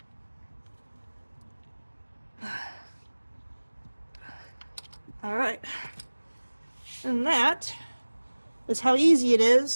All right, and that is how easy it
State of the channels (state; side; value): inverted; both; correlation -1.00